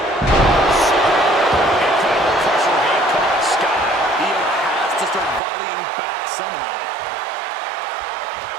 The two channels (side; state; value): left; drops out; at 5.4 s